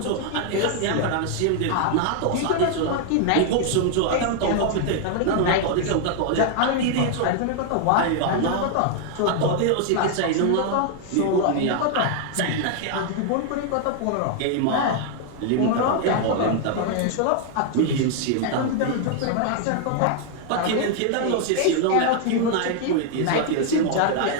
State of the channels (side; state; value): both; different; correlation 0.00